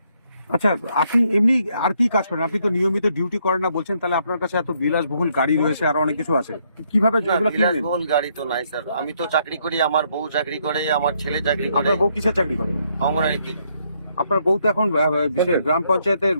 আচ্ছা, আপনি এমনি আর কি কাজ করেন? আপনি তো নিয়মিত ডিউটি করেন না বলছেন, তাহলে আপনার কাছে এত বিলাসবহুল গাড়ি রয়েছে আর অনেক কিছু আছে, কিভাবে না, এগুলো কিনলেন? বিলাসবহুল গাড়ি তো নাই স্যার। আমি তো চাকরি করি, আমার বউ চাকরি করে, আমার ছেলে চাকরি করে, আপনার বউ কিসের চাকরি করে? অঙ্গনারীতে। আপনার বউ তো এখন গ্রাম পঞ্চায়েতের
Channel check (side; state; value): both; inverted; correlation -0.72